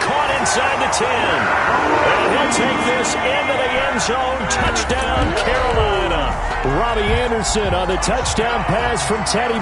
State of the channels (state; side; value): identical; both; correlation 1.00